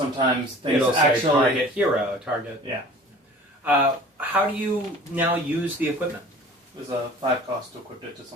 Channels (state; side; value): normal; both; correlation 0.44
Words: things It'll say actually. target hero, target. Yeah. How do you now use the equipment? There's a 5 cost to equip it to